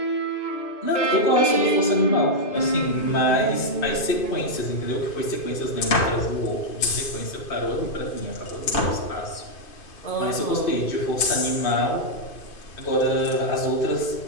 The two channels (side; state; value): right; late; 2.5 ms